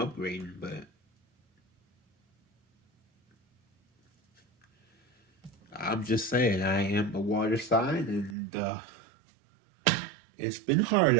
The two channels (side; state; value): left; drops out; at 8.3 s